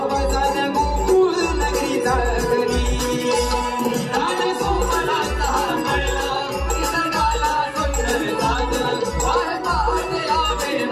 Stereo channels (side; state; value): both; identical; correlation 1.00